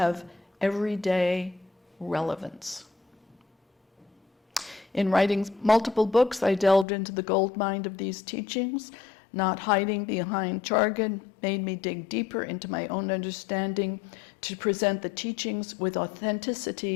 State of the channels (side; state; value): right; drops out; at 6.9 s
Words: everyday relevance. In writing multiple books, I delved into the goldmine of these teachings. Not hiding behind jargon made me dig deeper into my own understanding to present the teachings with